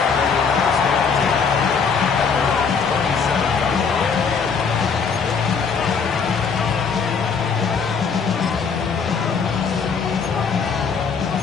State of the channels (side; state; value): right; quieter; 5.7 dB